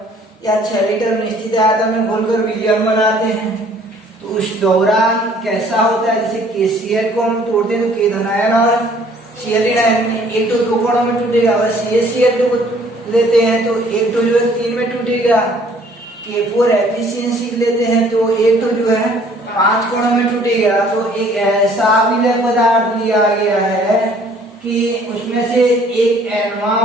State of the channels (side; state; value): both; normal; correlation 0.58